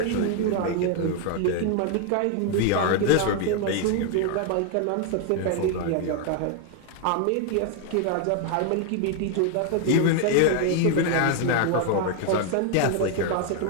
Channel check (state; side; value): different; both; correlation 0.00